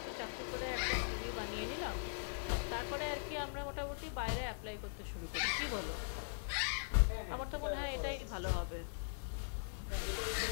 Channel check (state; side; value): silent; right; 51 dB below the other